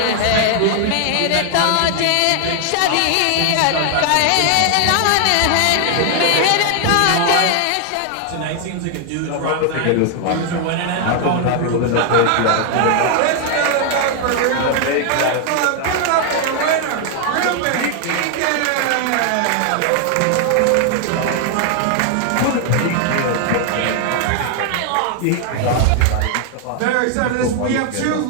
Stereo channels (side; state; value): both; different; correlation 0.00